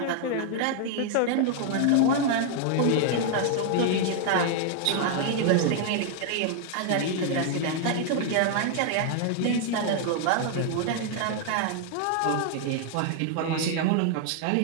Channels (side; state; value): both; different; correlation 0.00